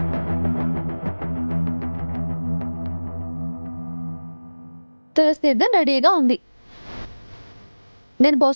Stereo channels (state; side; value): inverted; both; correlation -1.00